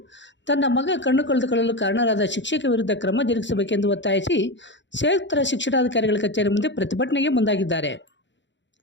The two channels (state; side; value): late; right; 0.53 ms